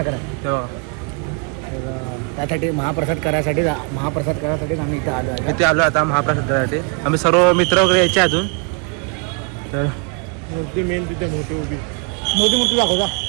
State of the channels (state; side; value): quieter; left; 34.9 dB